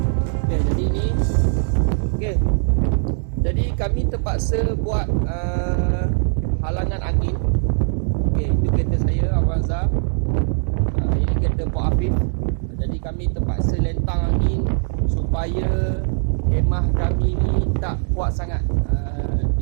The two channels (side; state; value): left; silent; digital silence